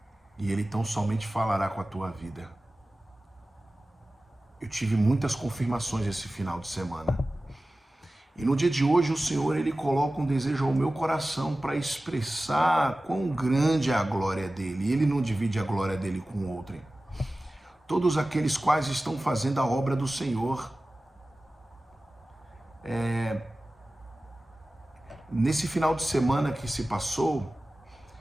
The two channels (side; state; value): both; normal; correlation 0.96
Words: E Ele tão somente falará com a tua vida. Eu tive muitas confirmações esse final de semana. E no dia de hoje o Senhor, Ele coloca um desejo ao meu coração para expressar quão grande é a glória dEle. Ele não divide a glória dEle com outrem. Todos aqueles quais estão fazendo a obra do Senhor. Nesse final de semana que se passou,